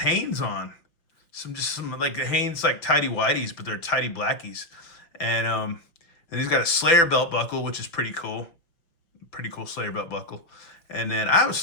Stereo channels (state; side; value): late; right; 5.9 ms